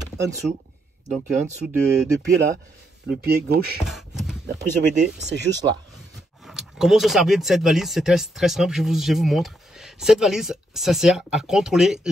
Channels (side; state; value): both; normal; correlation 0.77